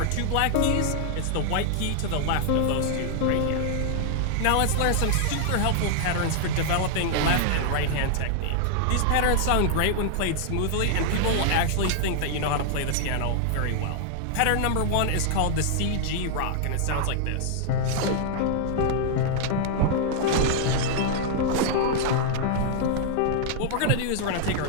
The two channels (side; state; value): both; different; correlation -0.01